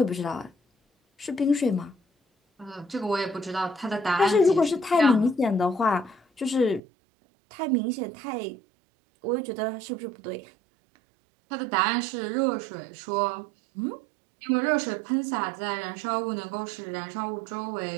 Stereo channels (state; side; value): drops out; left; at 6.8 s